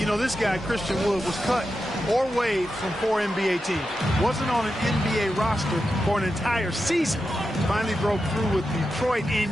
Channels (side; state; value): both; normal; correlation 0.89